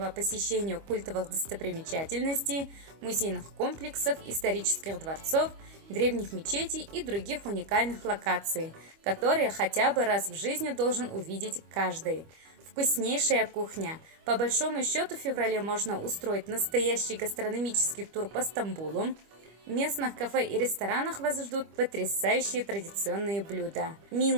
посещения культовых достопримечательностей, музейных комплексов, исторических дворцов, древних мечетей и других уникальных локаций, которые хотя бы раз в жизни должен увидеть каждый. Вкуснейшая кухня. По большому счету в феврале можно устроить настоящий гастрономический тур по Стамбулу. В местных кафе и ресторанах вас ждут потрясающие традиционные блюда.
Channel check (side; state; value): left; late; 25 ms